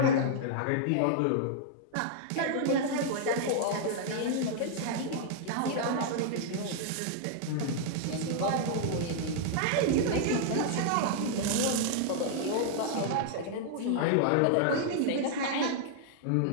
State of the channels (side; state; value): both; different; correlation -0.01